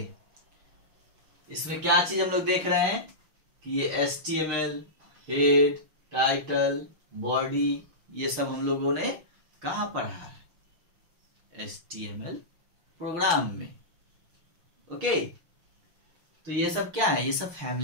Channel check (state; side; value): late; left; 6.5 ms